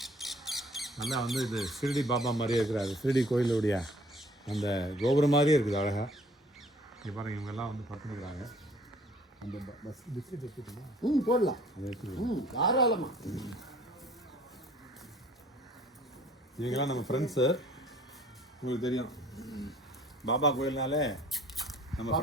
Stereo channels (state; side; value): normal; both; correlation 0.55